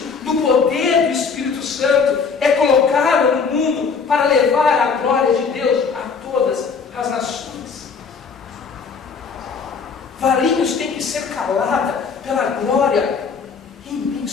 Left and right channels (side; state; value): right; quieter; 5.5 dB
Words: no poder do Espírito Santo, é colocada no mundo para levar a glória de Deus a todas as nações. Varinhos tem que ser calada pela glória